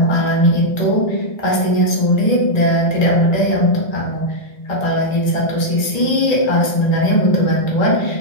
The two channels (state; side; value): late; right; 1.9 ms